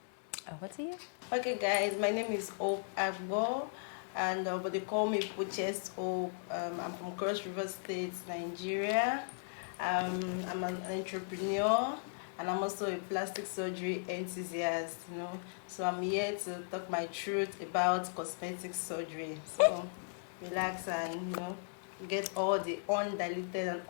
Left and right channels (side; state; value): right; silent; digital silence